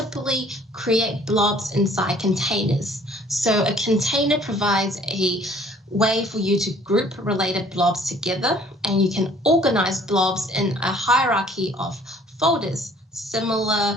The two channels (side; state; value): both; normal; correlation 0.56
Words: create blobs inside containers. So a container provides a way for you to group related blobs together, and you can organize blobs in a hierarchy of folders, similar